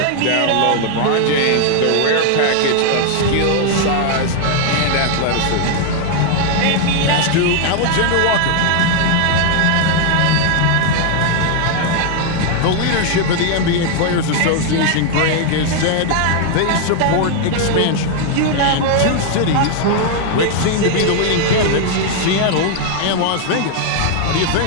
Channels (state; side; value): different; both; correlation 0.00